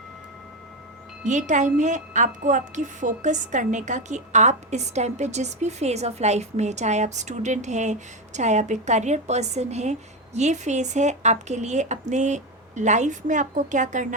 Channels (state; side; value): normal; both; correlation 0.12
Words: ये टाइम है आपको आपकी फोकस करने का कि आप इस टाइम पे जिस भी फेज़ ऑफ लाइफ में, चाहे आप स्टूडेंट हैं, चाहे आप एक करियर पर्सन हैं, ये फेज़ है आपके लिए अपने लाइफ में आपको क्या